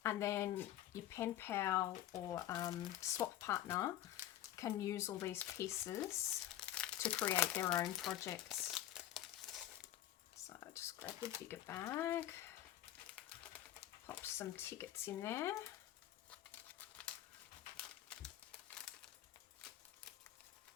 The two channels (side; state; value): right; quieter; 12.7 dB